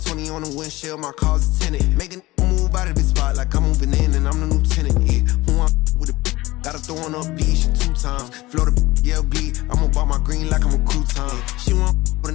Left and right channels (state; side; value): quieter; right; 19.4 dB